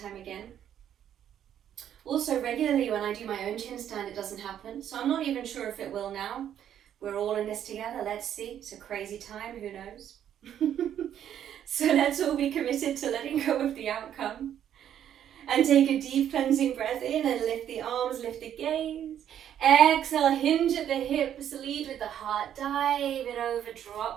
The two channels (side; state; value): left; quieter; 10.1 dB